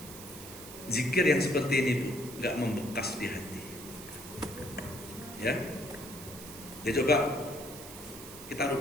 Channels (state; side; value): noise; right; hiss, 13 dB below the sound